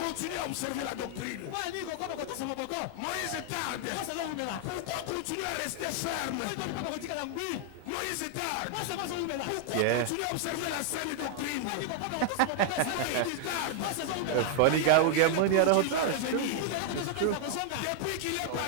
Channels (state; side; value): different; both; correlation 0.00